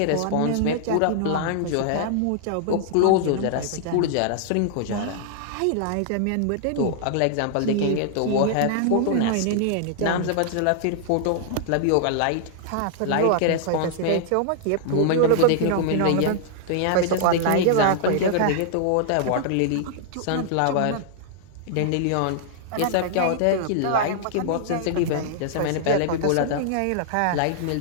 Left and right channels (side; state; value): both; different; correlation -0.01